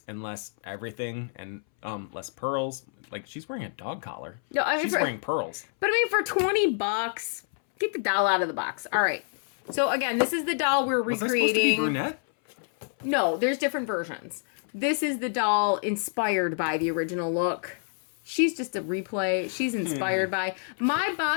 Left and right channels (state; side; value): silent; right; 60 dB below the other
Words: and less everything and less pearls. Like she's wearing a dog collar. No, I mean she's wearing pearls. But I mean, for $20, get the doll out of the box. All right. So again, this is the doll we're recreating. Was I supposed to be brunette? No, there's different versions. This is the doll inspired by the original look. She's just a replay. She's inspired by. My